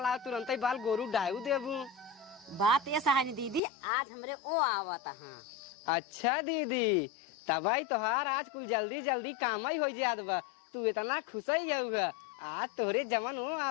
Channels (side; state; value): right; drops out; at 3.6 s